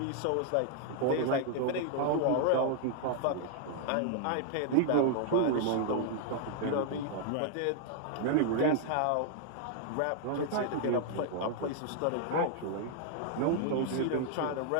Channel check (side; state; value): both; different; correlation 0.00